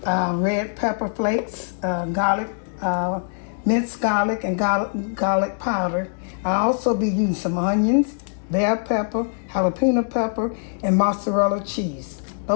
red pepper flakes, garlic, minced garlic, and garlic powder. I'll also be using some onions, bell pepper, jalapeno pepper, and mozzarella cheese.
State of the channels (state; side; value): silent; right; digital silence